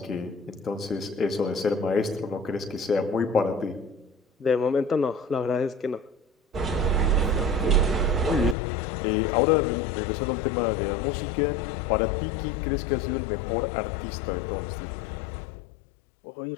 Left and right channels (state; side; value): drops out; right; at 8.6 s